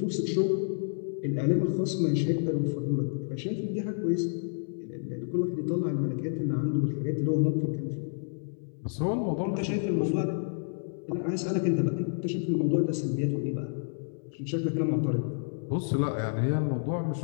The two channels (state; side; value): silent; right; 58 dB below the other